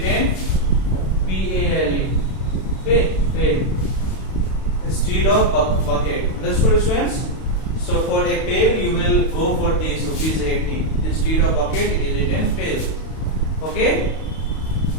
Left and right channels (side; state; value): right; late; 31 ms